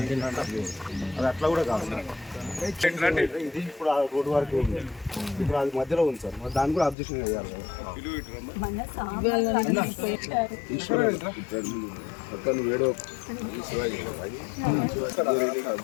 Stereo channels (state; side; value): drops out; right; at 7.0 s